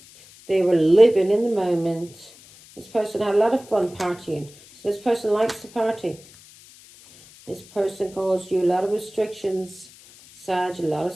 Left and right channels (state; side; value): noise; left; hiss, 23 dB below the sound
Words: They were living in the moment. This person had a lot of fun partying. So this person likes to party. This person caused you a lot of restrictions, Sag, a lot of